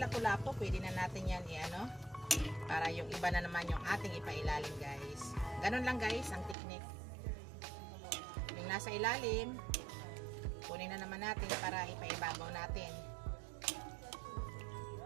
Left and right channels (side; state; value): left; drops out; at 6.6 s